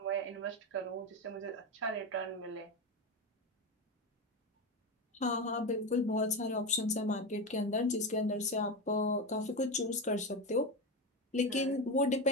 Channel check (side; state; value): both; normal; correlation 0.17